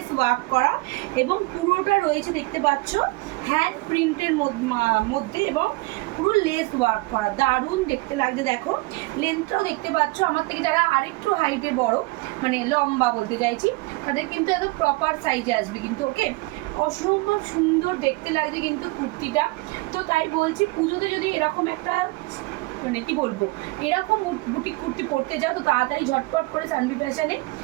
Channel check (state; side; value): quieter; left; 23.7 dB